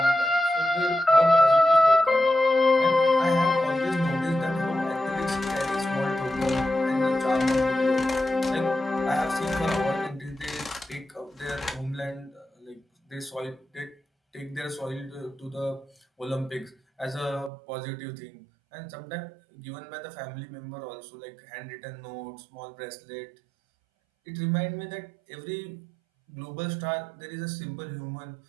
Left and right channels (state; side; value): drops out; left; at 17.5 s